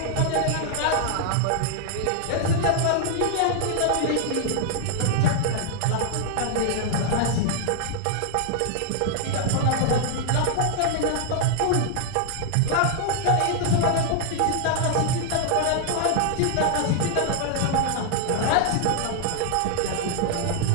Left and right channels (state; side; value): different; both; correlation 0.00